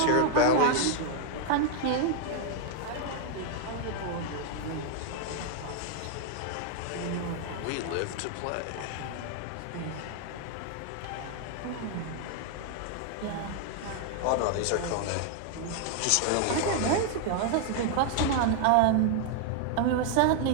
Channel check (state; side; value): different; both; correlation 0.00